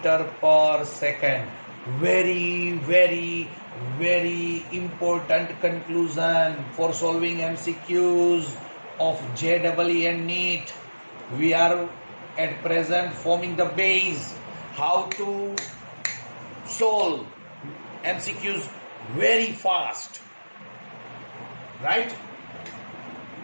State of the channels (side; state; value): both; inverted; correlation -1.00